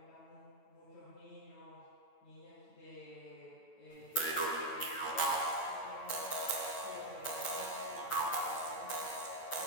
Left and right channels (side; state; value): right; late; 9.0 ms